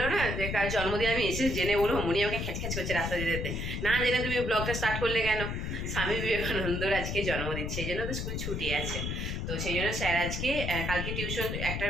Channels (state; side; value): noise; left; rumble, 3 dB below the sound